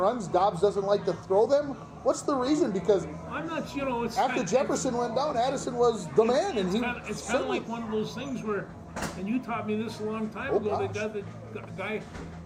Dobbs doesn't like to throw them. What's the reason? Because I'm not. After Jefferson went down, Addison was the man, and it's kind of like one of those things where, and you taught me this a long time ago. The guy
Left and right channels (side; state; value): both; identical; correlation 1.00